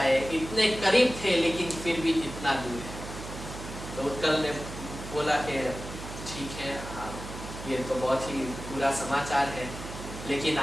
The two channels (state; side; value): noise; right; hum, 10 dB below the sound